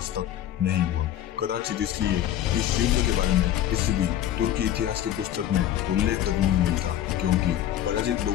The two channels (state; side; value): quieter; right; 11.6 dB